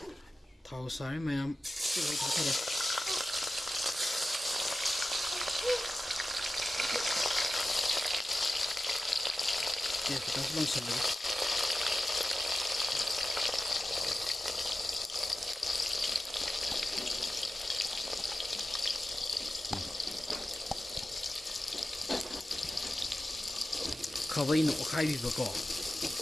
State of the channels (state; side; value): normal; both; correlation 0.94